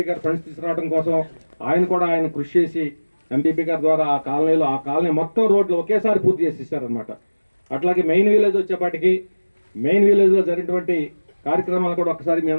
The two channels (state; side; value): inverted; both; correlation -1.00